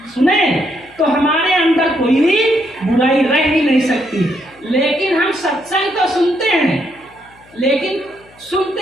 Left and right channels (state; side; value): noise; left; hum, 28 dB below the sound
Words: तो हमारे अंदर कोई भी बुराई रह ही नहीं सकती। लेकिन हम सत्संग तो सुनते हैं, लेकिन सुनते